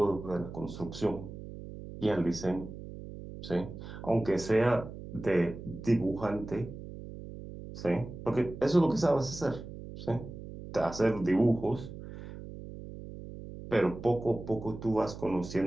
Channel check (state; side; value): noise; right; hum, 12 dB below the sound